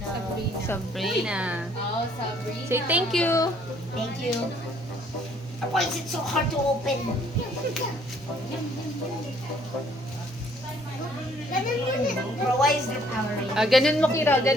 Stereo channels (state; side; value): normal; both; correlation 0.62